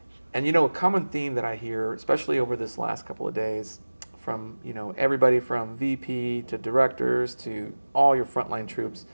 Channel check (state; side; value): inverted; both; correlation -1.00